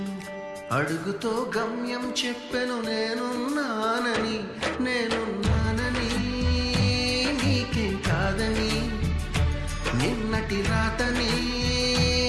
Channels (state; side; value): identical; both; correlation 1.00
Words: అడుగుతో గమ్యం చెప్పెను, నేనున్నానని నీకేం కాదని, నిన్నటి రాతని